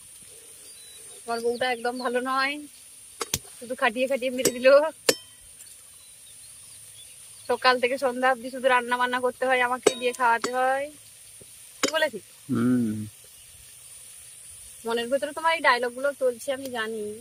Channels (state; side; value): identical; both; correlation 1.00